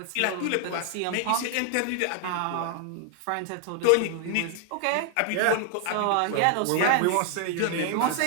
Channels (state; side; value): different; both; correlation 0.00